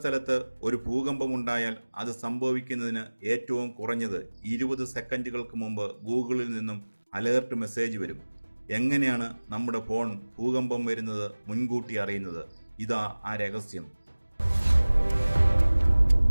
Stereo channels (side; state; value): both; inverted; correlation -1.00